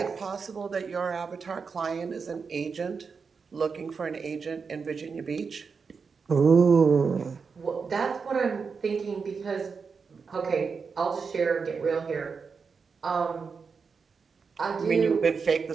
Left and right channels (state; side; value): quieter; left; 5.4 dB